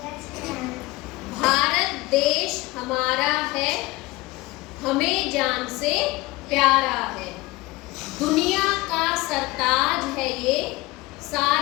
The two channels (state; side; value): quieter; right; 20.8 dB